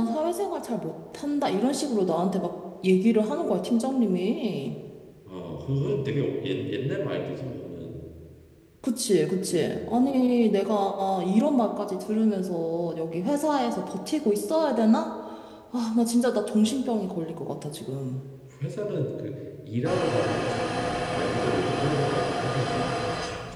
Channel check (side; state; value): both; identical; correlation 1.00